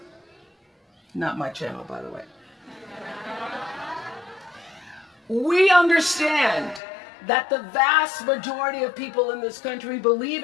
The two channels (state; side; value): drops out; right; at 6.8 s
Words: Not my channel, by the way. We understand that the vast majority of people in this country believe